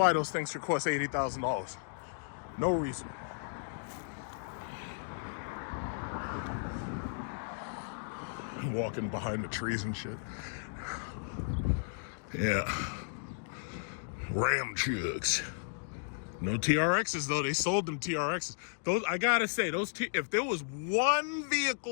those things should cost $80,000. No reason. Walking behind the trees and shit. Yeah. Ram chucks. No TRXs though. They sold them TRXs. Those, I gotta say, if there was one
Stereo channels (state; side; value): silent; right; digital silence